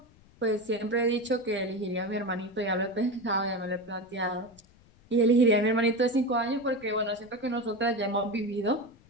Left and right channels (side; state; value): left; noise; rumble, 28 dB below the sound